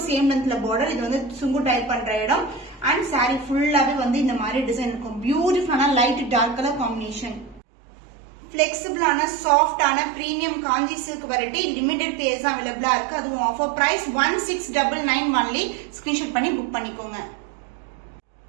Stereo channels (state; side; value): drops out; left; at 7.6 s